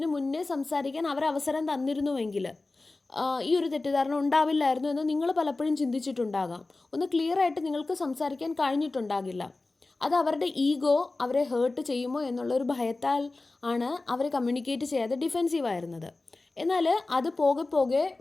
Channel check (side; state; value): right; quieter; 3.3 dB